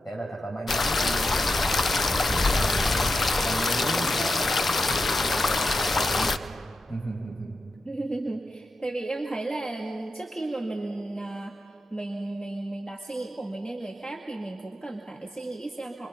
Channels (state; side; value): normal; both; correlation 0.88